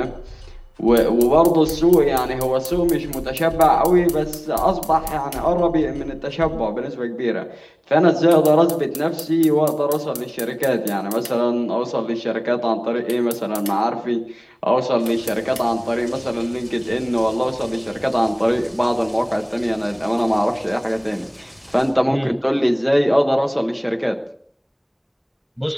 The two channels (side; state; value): both; identical; correlation 1.00